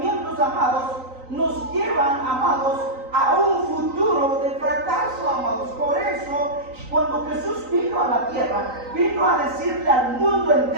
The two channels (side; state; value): left; late; 3.9 ms